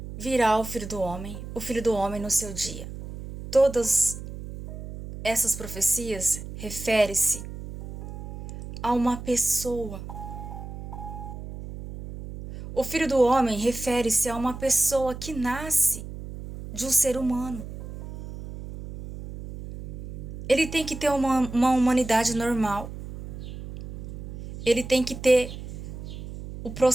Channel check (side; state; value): right; noise; hum, 11 dB below the sound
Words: virá o Filho do Homem no seu dia. Todas essas profecias referem-se a uma pessoa. O Filho do Homem refere-se a uma pessoa que nasce de um ser humano. Ele tem que ter uma humanidade normal. Ele tem que ter o